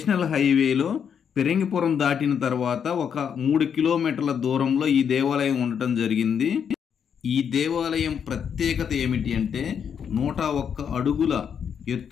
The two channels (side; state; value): right; quieter; 7.6 dB